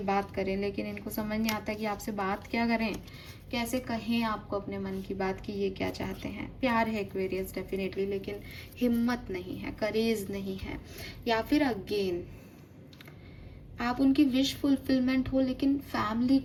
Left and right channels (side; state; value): both; identical; correlation 1.00